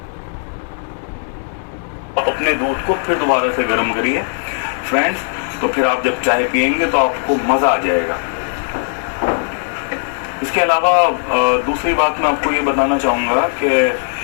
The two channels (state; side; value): silent; right; digital silence